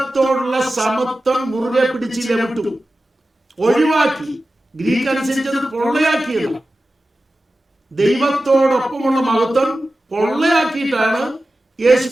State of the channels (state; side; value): normal; both; correlation 0.94